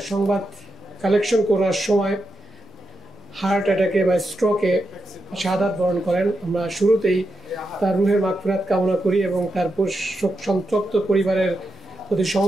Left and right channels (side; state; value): both; normal; correlation 0.86